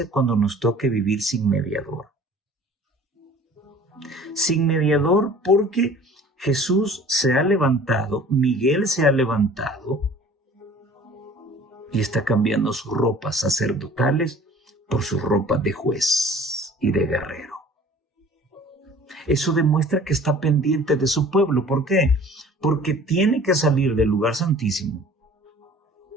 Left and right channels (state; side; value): normal; both; correlation 0.48